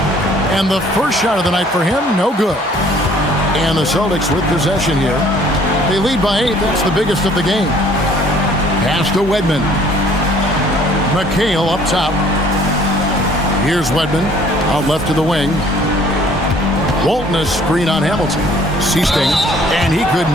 And the first shot of the night for him, no good. And the Celtics with possession here. They lead by 8. That's the biggest of the game. Pass to Wedman. McHale up top. Here's Wedman. Out left to the wing. Walton a screen on Hamilton. Seasting. And he could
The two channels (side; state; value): both; normal; correlation 0.57